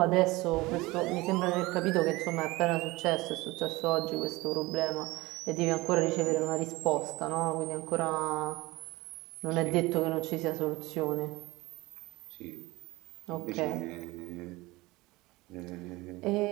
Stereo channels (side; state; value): left; quieter; 21.2 dB